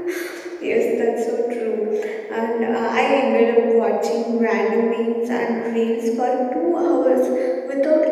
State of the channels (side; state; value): both; identical; correlation 1.00